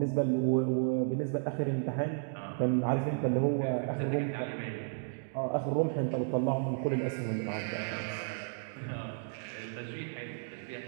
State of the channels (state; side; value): silent; left; digital silence